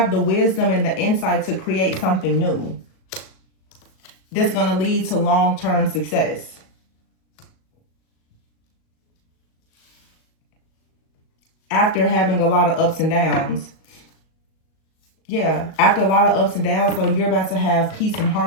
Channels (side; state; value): right; late; 37 ms